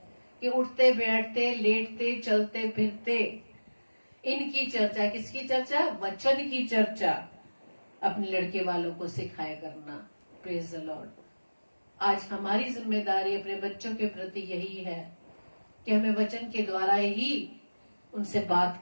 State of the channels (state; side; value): inverted; both; correlation -1.00